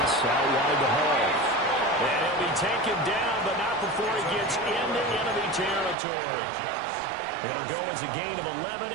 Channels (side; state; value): left; drops out; at 6.0 s